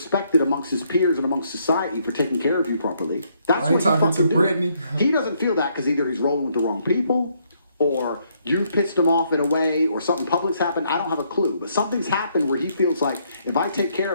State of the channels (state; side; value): inverted; both; correlation -0.71